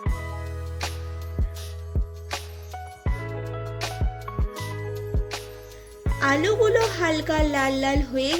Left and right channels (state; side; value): identical; both; correlation 1.00